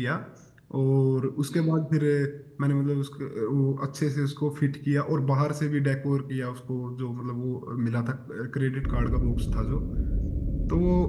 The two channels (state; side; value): identical; both; correlation 1.00